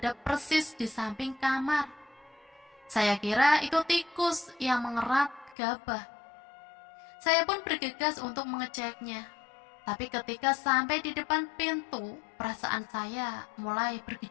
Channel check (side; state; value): right; drops out; at 5.6 s